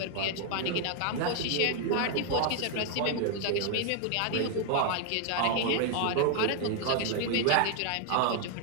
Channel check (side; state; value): both; different; correlation 0.00